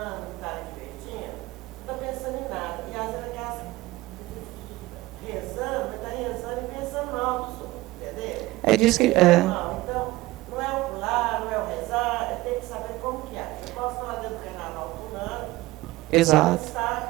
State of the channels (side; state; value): left; quieter; 19.0 dB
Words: um cara divertindo, não estou pensando em nada. E às vezes aqui rezando, mas está rezando e pensando mal do som, entendeu? É disso que. Não, então, não é o pular, não é o rezar, é ter que saber como que é. Eu posso falar dentro do carnaval pulando, Exato.